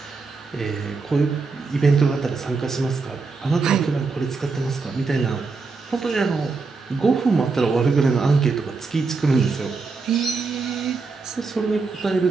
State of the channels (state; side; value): quieter; left; 4.3 dB